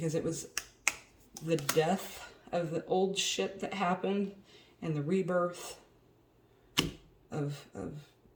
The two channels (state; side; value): identical; both; correlation 1.00